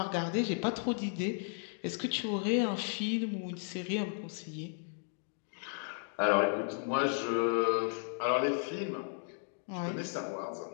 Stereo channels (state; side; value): silent; right; 55 dB below the other